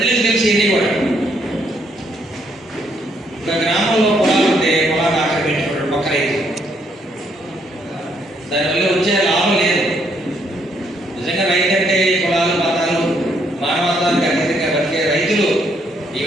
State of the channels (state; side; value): normal; both; correlation 0.71